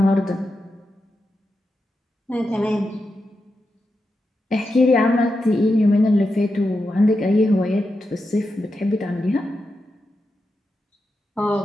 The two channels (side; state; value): both; normal; correlation 0.88